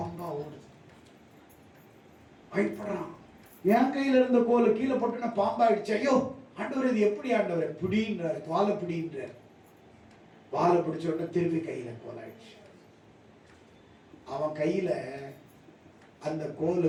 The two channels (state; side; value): identical; both; correlation 1.00